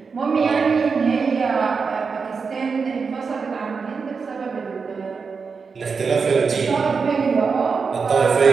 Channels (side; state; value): left; quieter; 5.2 dB